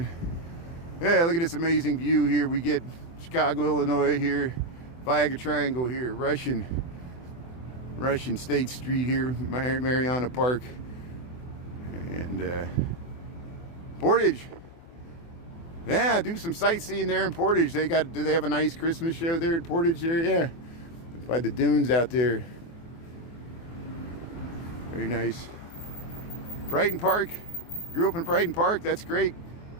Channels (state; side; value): late; right; 24 ms